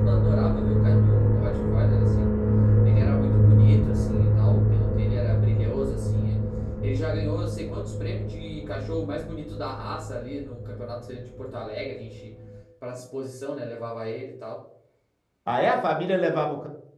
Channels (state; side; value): identical; both; correlation 1.00